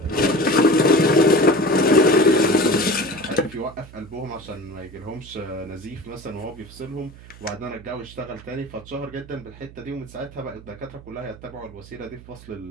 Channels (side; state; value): right; noise; hum, 19 dB below the sound